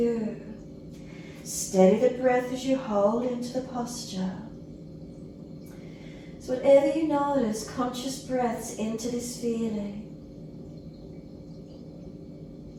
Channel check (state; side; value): identical; both; correlation 1.00